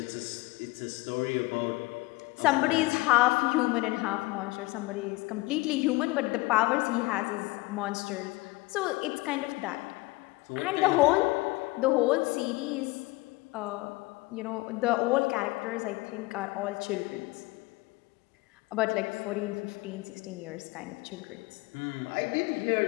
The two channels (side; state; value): right; quieter; 22.0 dB